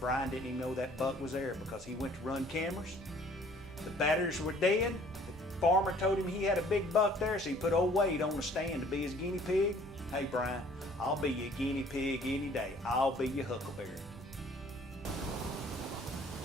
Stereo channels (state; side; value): normal; both; correlation 0.56